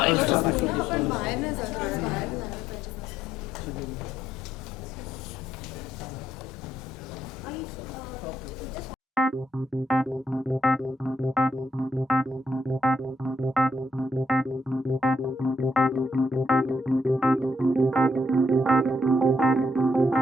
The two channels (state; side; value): normal; both; correlation 0.73